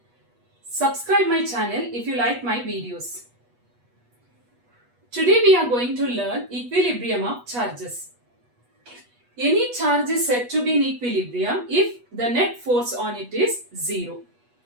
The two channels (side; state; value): left; late; 8.2 ms